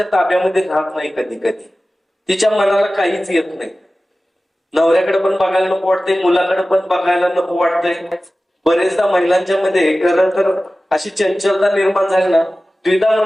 ताब्यामध्ये राहत नाही. कधी कधी तिच्या मनाला काहीच येत नाही. नवऱ्याकडे पण बघायला नको वाटते, मुलाकडे पण बघायला नको वाटतंय. बरेचदा महिलांच्या मध्ये खरं तर अशी चंचलता निर्माण झाली ना, द्विधा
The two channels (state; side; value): normal; both; correlation 0.96